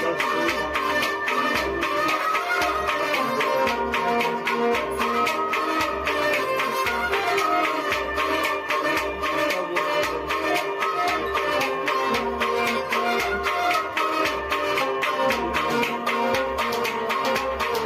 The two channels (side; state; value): both; identical; correlation 1.00